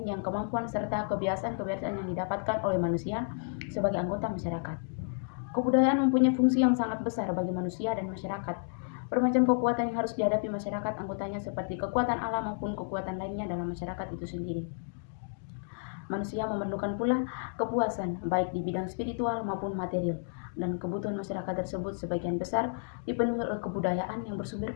yang kemampuan serta kebiasaan-kebiasaan yang didapatkan oleh manusia sebagai anggota masyarakat. Kebudayaan mempunyai fungsi yang sangat besar bagi manusia dan masyarakat. Bermacam kekuatan yang harus dihadapi masyarakat anggotanya seperti kekuatan alam maupun kekuatan lainnya dalam masyarakat itu sendiri. Manusia memerlukan pula kepuasan baik di bidang spiritual maupun material, dan kebutuhan masyarakat tersebut sebagian besar dipenuhi oleh kebudayaan yang bersumber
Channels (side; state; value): right; silent; digital silence